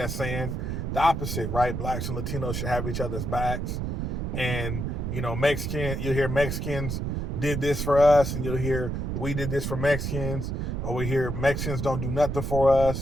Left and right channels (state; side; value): noise; right; rumble, 2 dB below the sound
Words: saying the opposite, right? Blacks and Latinos should have each other's backs. And, you'll hear Mexicans did this for us, and you'll hear we did this for Mexicans, or we hear Mexicans don't do nothing for